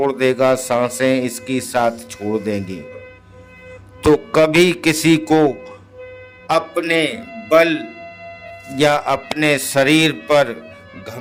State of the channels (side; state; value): both; identical; correlation 1.00